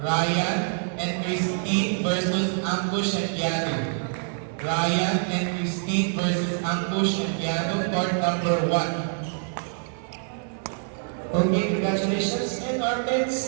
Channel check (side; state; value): left; silent; 60 dB below the other